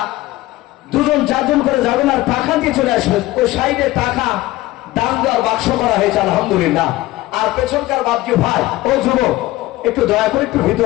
দুজন চারজন করে যাবেন আর টাকা দিয়ে চলে আসবেন। ওই সাইডে টাকা দান দেওয়ার বাক্স করা হয়েছে আলহামদুলিল্লাহ। আর পেছনকার ভাবছি ভাই ও যুবক একটু দয়া করে একটু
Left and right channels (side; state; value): right; quieter; 17.5 dB